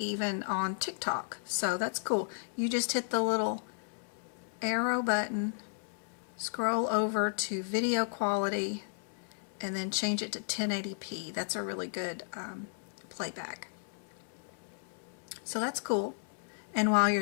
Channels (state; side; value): silent; right; digital silence